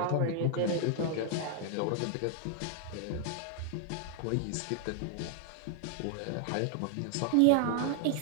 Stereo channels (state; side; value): different; both; correlation 0.00